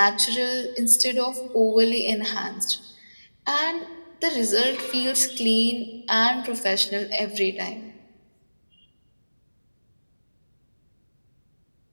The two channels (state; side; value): inverted; both; correlation -1.00